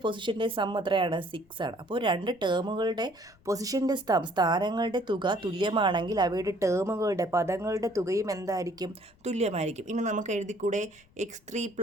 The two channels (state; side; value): noise; left; rumble, 30 dB below the sound